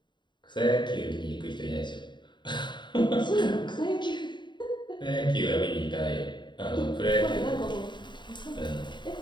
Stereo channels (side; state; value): right; late; 0.22 ms